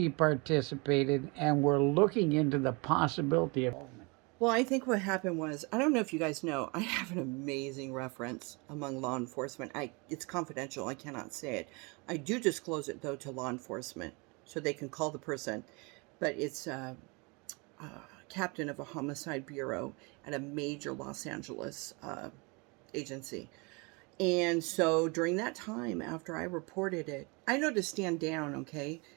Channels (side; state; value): left; quieter; 29.2 dB